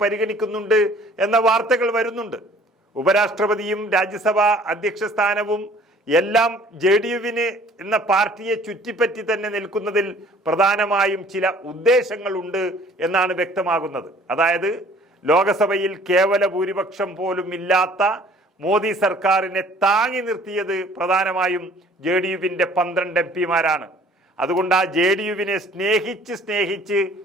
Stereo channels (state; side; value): normal; both; correlation 0.54